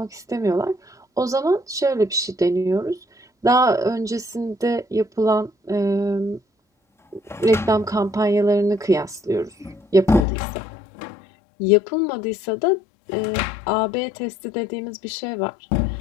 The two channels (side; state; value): right; drops out; at 10.2 s